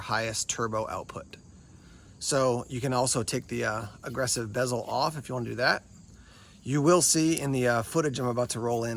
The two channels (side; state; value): both; identical; correlation 1.00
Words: turbo output. So you can also take the aggressive bezel off if you want to do that. You will see in the footage I'm about to roll